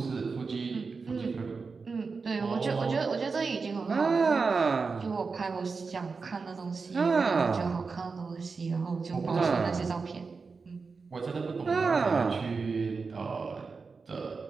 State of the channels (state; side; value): quieter; left; 4.7 dB